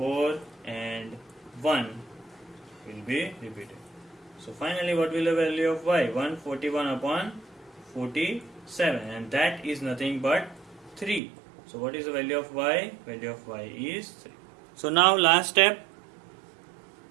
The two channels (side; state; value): left; drops out; at 11.2 s